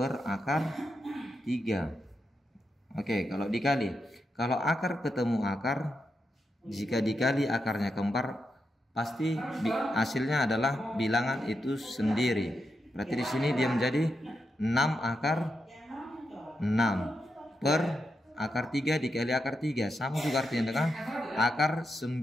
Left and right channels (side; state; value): both; normal; correlation 0.85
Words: akar 3. Oke, kalau dikali, kalau akar ketemu akar, jika dikali akarnya kembar, pasti hasilnya adalah bilangan itu sendiri. Berarti di sini dia menjadi 6 akar 6 per akar 3 dikali akar 3, sama juga artinya dengan akar